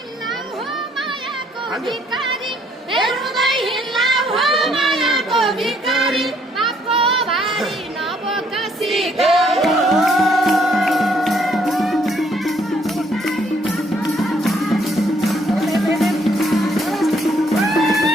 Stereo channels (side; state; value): both; normal; correlation 0.66